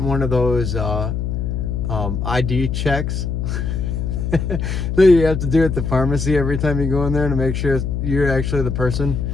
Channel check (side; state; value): left; noise; hum, 2 dB below the sound